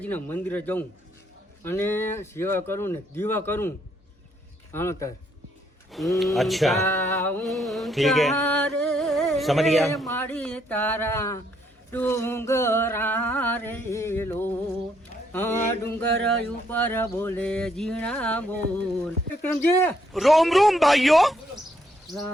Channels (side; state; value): both; normal; correlation 0.71